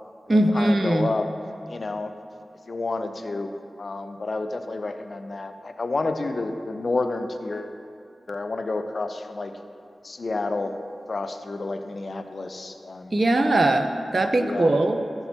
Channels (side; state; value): both; normal; correlation 0.93